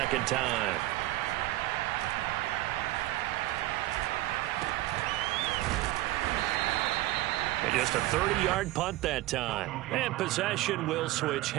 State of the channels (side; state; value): left; quieter; 17.0 dB